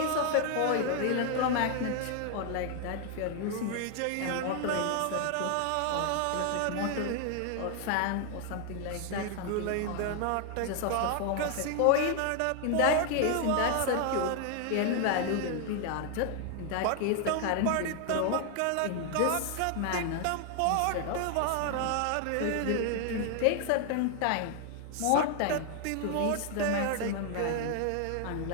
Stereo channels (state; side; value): different; both; correlation 0.00